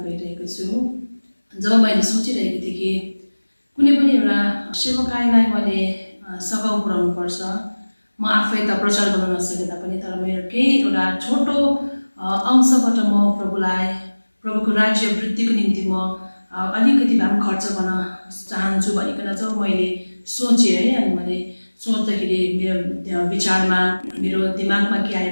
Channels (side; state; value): both; inverted; correlation -1.00